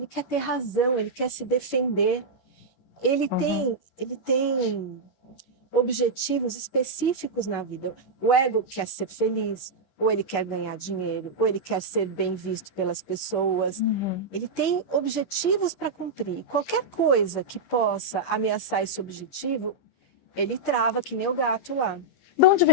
quer ter razão, ele quer se defender. Ele tem objetivos específicos na vida. O ego quer ser feliz, ou ele quer ganhar dinheiro, ou ele quer ser bem visto pelas pessoas. Ele tem objetivos para cumprir. Qualquer coisa que possa ameaçar esse objetivo, ele trava, que nem o gato lá. De onde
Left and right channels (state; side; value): late; right; 11 ms